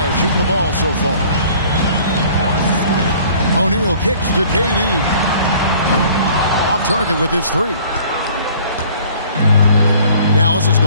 shooting the ball so far. O'Neal kicks to KD. Off target with his three. Dallas has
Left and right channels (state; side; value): inverted; both; correlation -0.53